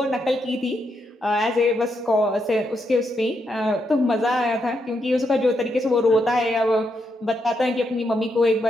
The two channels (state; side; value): normal; both; correlation 0.80